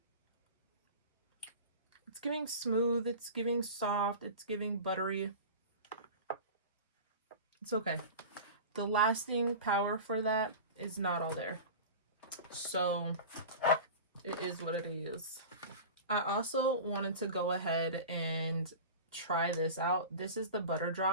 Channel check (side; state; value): both; inverted; correlation -0.33